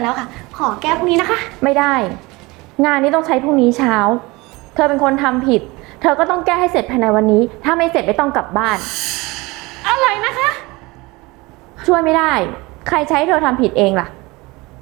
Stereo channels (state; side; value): quieter; left; 23.3 dB